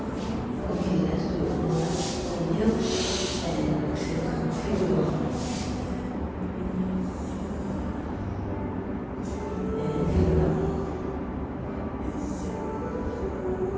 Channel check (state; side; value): identical; both; correlation 1.00